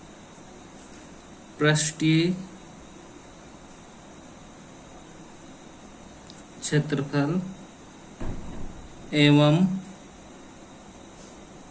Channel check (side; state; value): both; identical; correlation 1.00